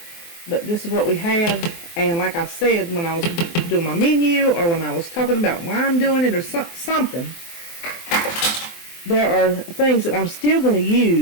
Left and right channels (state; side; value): late; right; 24 ms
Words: but this is what we have. And like I said, when I was doing my menu or when I was talking about why I'm doing it or something, there are things that I'm still going to